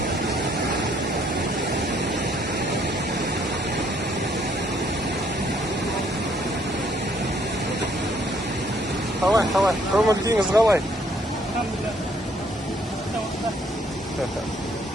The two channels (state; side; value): normal; both; correlation 0.66